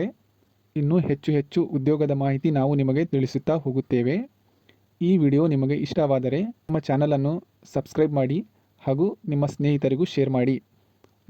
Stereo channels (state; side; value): identical; both; correlation 1.00